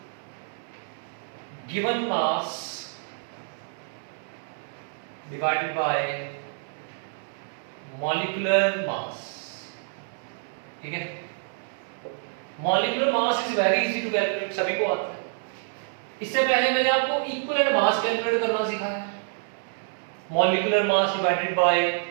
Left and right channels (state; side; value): silent; left; 60 dB below the other